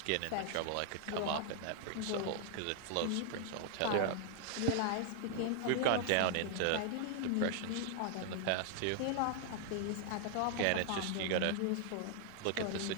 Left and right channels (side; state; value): both; different; correlation 0.00